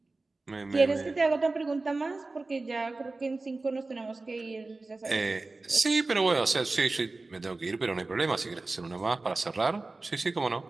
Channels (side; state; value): left; quieter; 3.4 dB